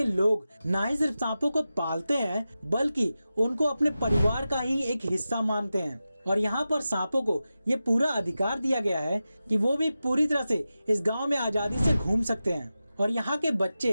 लोग ना ही सिर्फ सांपों को पालते हैं बल्कि उनको अपने परिवार का ही एक हिस्सा मानते हैं। और यहाँ पर सांपों को ये पूरा अधिकार दिया गया है कि वो भी पूरी तरह से इस गांव में आजादी से घूम सकते हैं। और यहाँ के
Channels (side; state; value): both; inverted; correlation -0.93